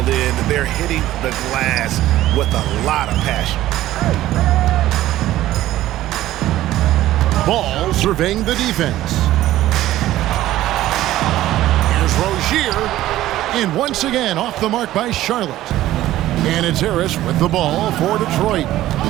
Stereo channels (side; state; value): left; quieter; 14.7 dB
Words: in. They're hitting the glass with a lot of passion. Ball surveying the defense. Here's Rozier. And once again off the mark by Charlotte. And it's Harris with the ball for Detroit.